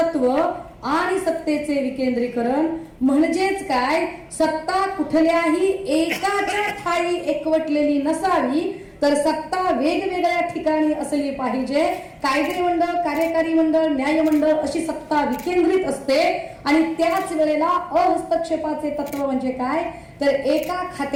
आणि सत्तेचे विकेंद्रीकरण। म्हणजेच काय, सत्ता कुठल्याही एकाच्या ठाई एकवटलेली नसावी, तर सत्ता वेगवेगळ्या ठिकाणी असली पाहिजे। कायदे मंडळ, कार्यकारी मंडळ, न्याय मंडळ अशी सत्ता विकेंद्रित असते। आणि त्याच वेळेला अहस्तक्षेपाचे तत्व म्हणजे काय, तर एका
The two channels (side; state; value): both; identical; correlation 1.00